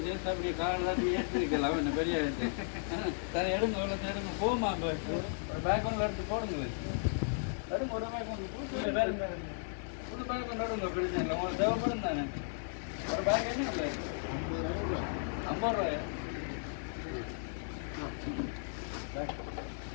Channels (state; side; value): silent; right; 54 dB below the other